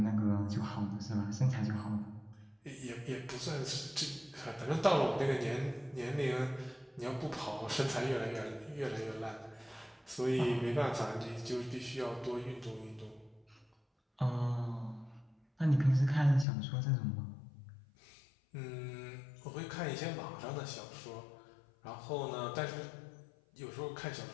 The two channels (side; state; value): right; drops out; at 16.4 s